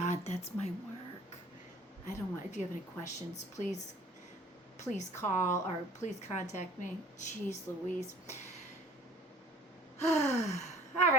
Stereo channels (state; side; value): normal; both; correlation 0.50